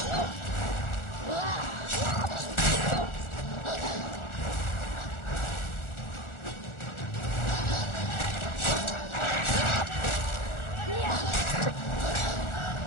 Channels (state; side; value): late; right; 1.4 ms